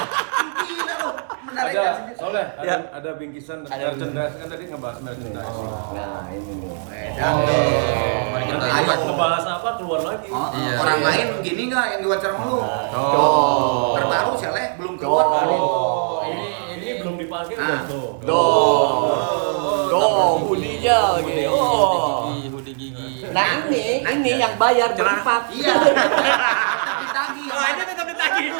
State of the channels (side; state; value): left; silent; 57 dB below the other